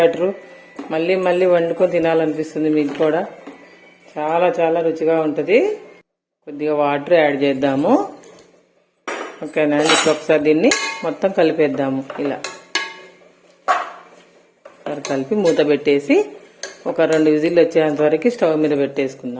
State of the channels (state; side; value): identical; both; correlation 1.00